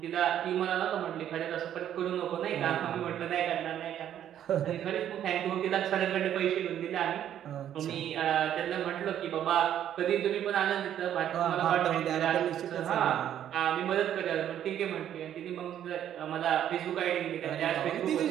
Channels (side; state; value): left; quieter; 10.6 dB